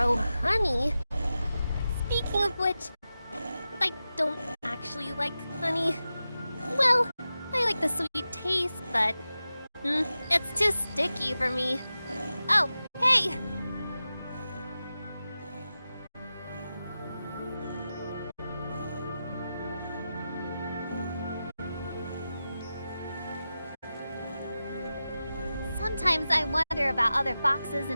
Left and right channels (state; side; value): inverted; both; correlation -0.93